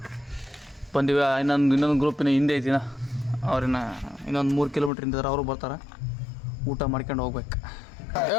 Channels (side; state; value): right; drops out; at 4.9 s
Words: ಬಂದಿವಿ. ಇನ್ನೊಂದು ಗ್ರೂಪಿನ ಹಿಂದೆ ಐತಿನ, ಅವ್ರಿನ ಇನ್ನೊಂದು 3 ಕಿಲೋಮೀಟ್ರ್ ಹಿಂದಿದ್ರೆ ಅವರು ಬರ್ತಾರೆ. ಊಟ ಮಾಡ್ಕೊಂಡು ಹೋಗ್ಬೇಕು.